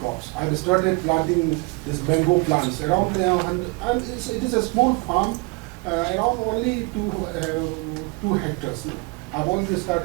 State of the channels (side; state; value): left; quieter; 28.2 dB